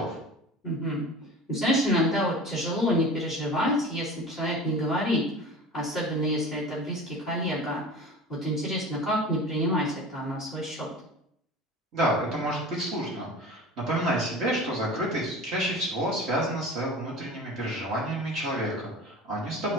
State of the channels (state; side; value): normal; both; correlation 0.36